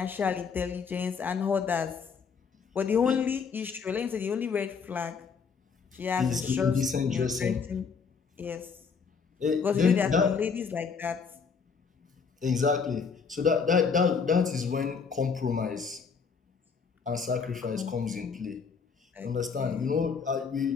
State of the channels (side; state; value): right; quieter; 5.7 dB